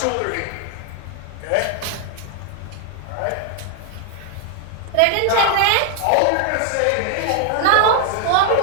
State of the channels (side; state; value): both; different; correlation 0.00